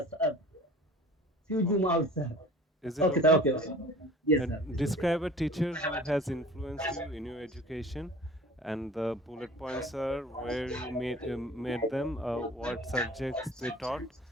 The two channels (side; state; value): both; normal; correlation 0.44